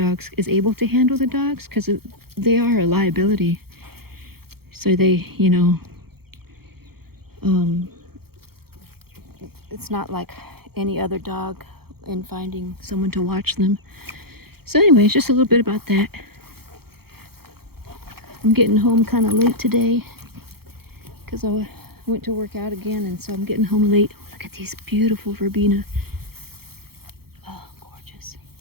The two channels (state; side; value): late; left; 0.95 ms